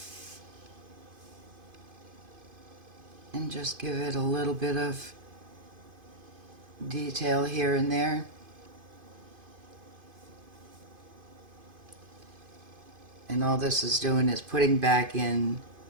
And just give it a little bit of detail here and there. And all this is doing is putting back in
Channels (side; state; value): left; late; 2.5 ms